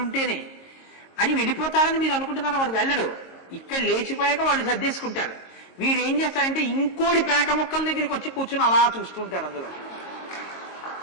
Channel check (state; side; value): late; right; 22 ms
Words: అని వెళ్ళిపోతారని మీరు అనుకుంటున్నారా? వాడు వెళ్ళడు. ఇక్కడ లేచిపోయాక వాడు సర్దేసుకుంటాడు. వీడు ఏం చేస్తాడంటే ఇంకోటి పేక ముక్కల దగ్గరికి వచ్చి కూర్చుని అలా చూస్తుంటాడు. అందులో